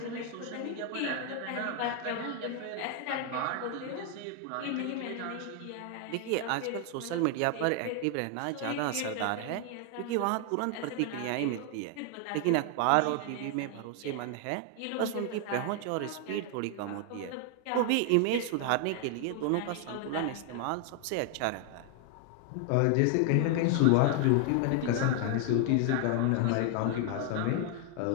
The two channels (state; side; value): different; both; correlation 0.00